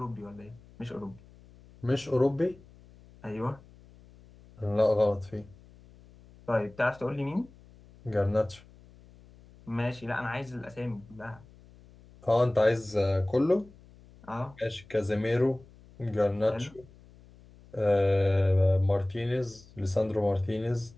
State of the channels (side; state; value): left; noise; hum, 24 dB below the sound